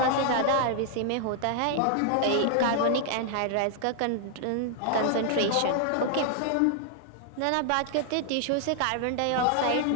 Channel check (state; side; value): different; both; correlation 0.00